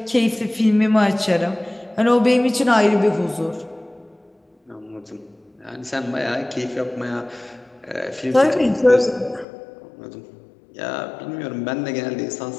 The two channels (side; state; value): right; drops out; at 9.5 s